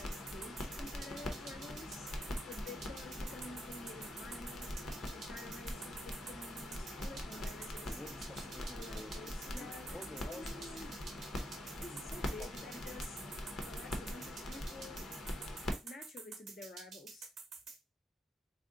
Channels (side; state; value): both; normal; correlation 0.79